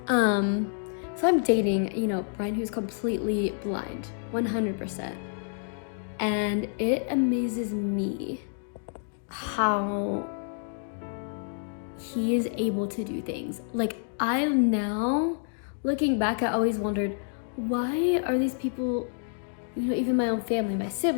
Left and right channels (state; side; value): silent; right; digital silence